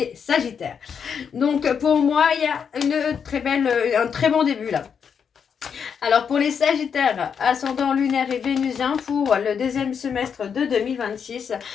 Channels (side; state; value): right; quieter; 7.0 dB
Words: Sagittaires. Donc, pour moi, il y a un très bon début là. Alors pour les Sagittaires, ascendant lunaire et vénusien pour le deuxième semestre de 2026